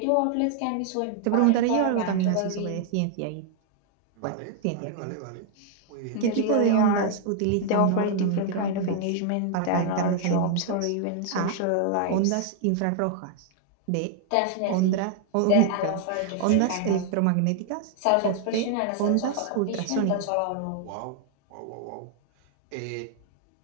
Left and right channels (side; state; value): both; different; correlation 0.00